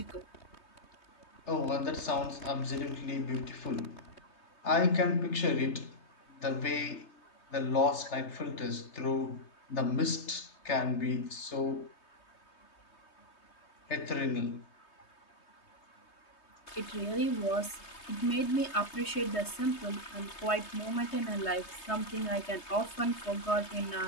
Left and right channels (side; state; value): right; late; 3.3 ms